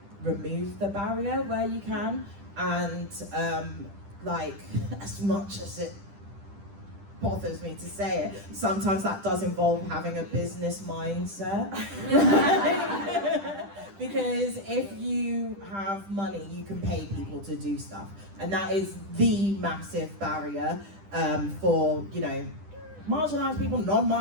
remove the barrier where you can, and like, as much as it bothers me to say it, sometimes that does involve having a business mindset. Because if you have money, you can pay people to do stuff, and that is the massive barrier for, you know, marginalised people,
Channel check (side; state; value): left; late; 10 ms